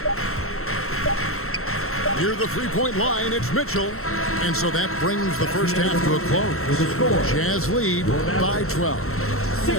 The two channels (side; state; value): right; late; 0.63 ms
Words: Near the 3-point line, it's Mitchell. And so that brings the first half to a close. Jazz lead by 12.